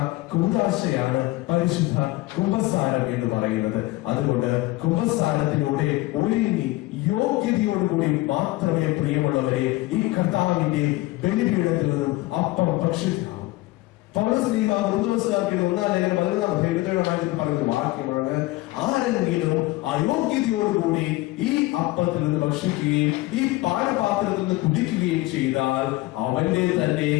കൂദാശയാണ് പരിശുദ്ധ കുമ്പസാരം എന്ന് പറയുന്നത്. അതുകൊണ്ട് കുമ്പസാരത്തിലൂടെ ഒരുങ്ങി യോഗ്യതയോടുകൂടി മാത്രമേ പ്രിയമുള്ളവരെ ഈ കർത്താവിന്റെ ബലിപീഠത്തിൽ നിന്നും അപ്പം ഭക്ഷിക്കാവൂ. പൗലോസ്ലീഹ കൊരിന്ത്യക്കാർക്ക് 1-ാം ലേഖനം 11-ാം അധ്യായം 27-ാം വാക്യത്തിൽ പറയുന്ന ഒരു വാക്യമാണ്, ആരെങ്കിലും അയോഗ്യതയോടുകൂടി ഈ അപ്പത്തിൽ നിന്ന് ഭക്ഷിക്കുകയും ഈ പാനപാത്രത്തിൽ നിന്ന് കുടിക്കുകയും ചെയ്താൽ അവന്റെ തന്നെ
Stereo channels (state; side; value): quieter; right; 19.6 dB